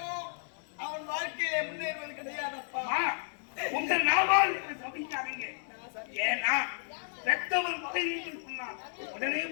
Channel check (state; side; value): silent; right; digital silence